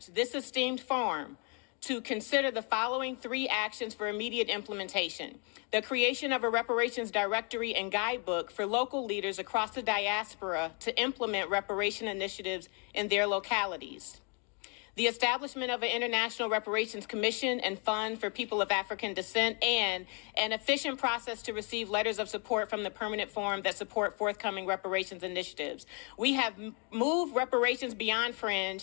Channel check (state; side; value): quieter; right; 36.2 dB